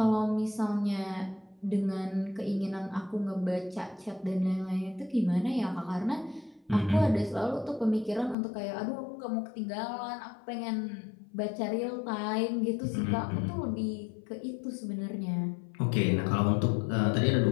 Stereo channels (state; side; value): drops out; right; at 8.3 s